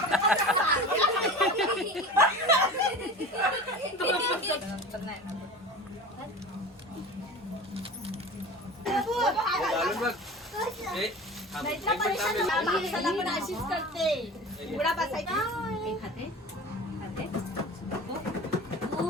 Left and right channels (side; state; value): both; normal; correlation 0.35